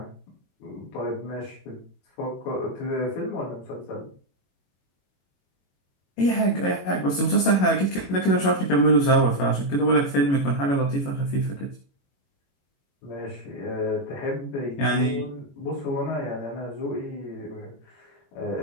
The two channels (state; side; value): late; right; 21 ms